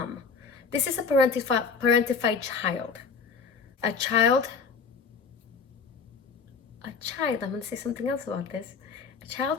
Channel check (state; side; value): quieter; right; 5.4 dB